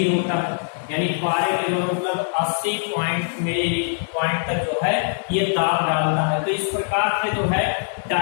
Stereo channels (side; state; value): right; silent; digital silence